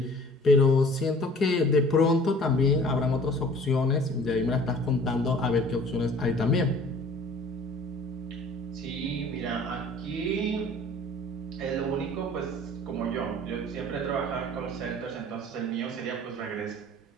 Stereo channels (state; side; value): normal; both; correlation 0.49